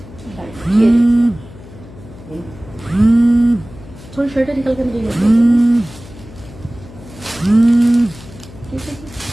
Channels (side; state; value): left; noise; hum, 19 dB below the sound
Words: थोड़ी शर्ट निकल कर